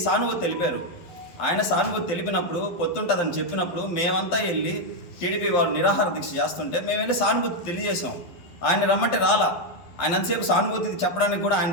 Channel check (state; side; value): late; right; 12 ms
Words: సానుభూతి తెలిపారు. ఆయన సానుభూతి తెలిపినప్పుడు పొత్తుంటుందని చెప్పినప్పుడు మేమంతా వెళ్ళి టీడీపీ వాళ్ళు నిరాహార దీక్ష చేస్తుంటే మేము వెళ్ళి సానుభూతి తెలియజేసాం. ఆయన రమ్మంటే రాలా. ఆయన అంతసేపు సానుభూతి చెప్పడానికి కూడా ఆయన